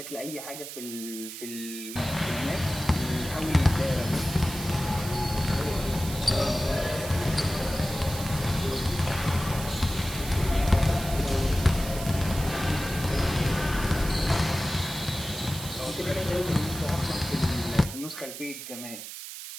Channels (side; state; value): right; noise; hiss, 10 dB below the sound